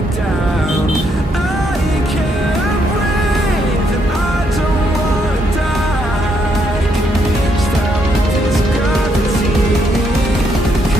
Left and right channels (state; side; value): normal; both; correlation 0.75